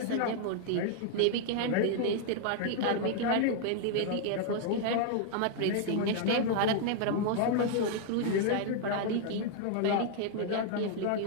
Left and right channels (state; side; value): different; both; correlation 0.00